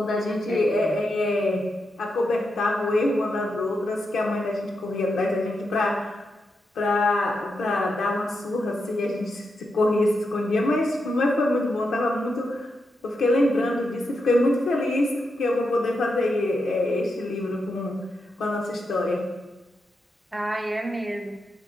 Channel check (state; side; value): normal; both; correlation 0.85